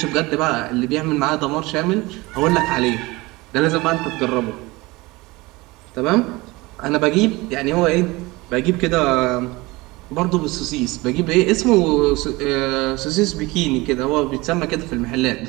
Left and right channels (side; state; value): left; quieter; 22.2 dB